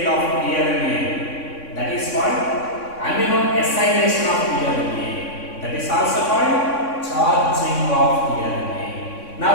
of tRNA, that is called amino acylation of tRNA. That is also called charging of tRNA. Now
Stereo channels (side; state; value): right; late; 3.6 ms